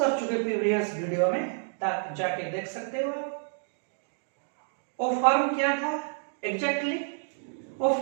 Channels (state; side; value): silent; left; digital silence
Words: चुके प्रीवियस वीडियो में, तक जाके देख सकते हो आप। वो फॉर्म क्या था एग्जैक्टली? वो